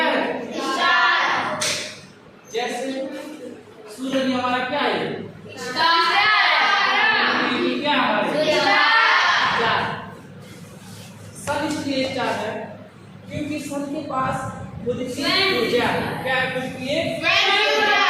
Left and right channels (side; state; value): both; identical; correlation 1.00